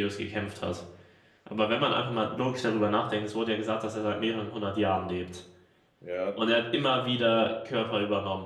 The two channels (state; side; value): identical; both; correlation 1.00